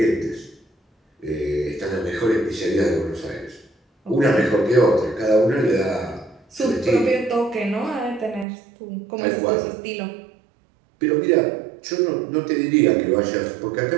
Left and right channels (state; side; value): drops out; left; at 8.5 s